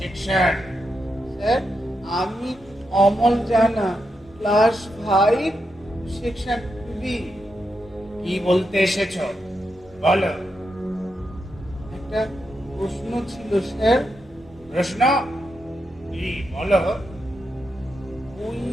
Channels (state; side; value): normal; both; correlation 0.85